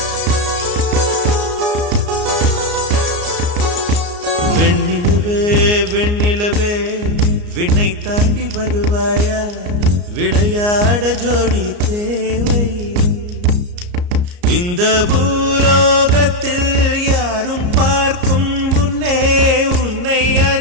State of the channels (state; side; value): late; left; 34 ms